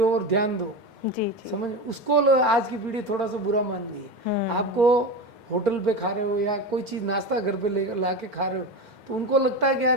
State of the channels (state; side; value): late; left; 2.1 ms